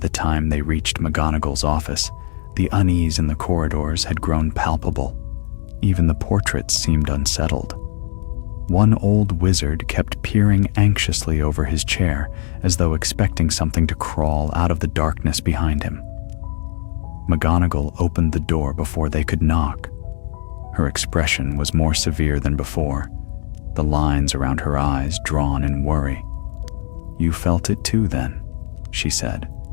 time they reached McGonagall's office, the unease in the corridors had grown palpable. Even the portraits seemed unsettled. One old wizard kept peering anxiously over his chair, as though expecting something to crawl out of the darkness behind him. McGonagall opened the door before they could knock. Her expression was more severe than before, the lines around her eyes drawn in worry. "You felt it too, then," she said.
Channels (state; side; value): silent; right; 56 dB below the other